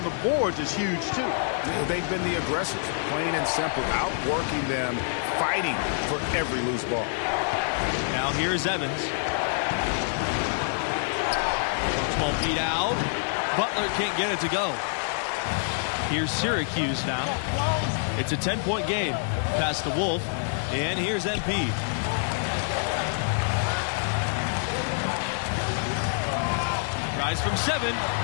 the boards is huge, too. They've been the aggressors, plain and simple, outworking them, fighting for every loose ball. Now here's Evans. 12 feet out. Butler can't get it to go. Here's Syracuse now. It's a 10-point game. Pass to Wolf. And here's MP. Rise from 7.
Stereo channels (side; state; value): right; silent; 59 dB below the other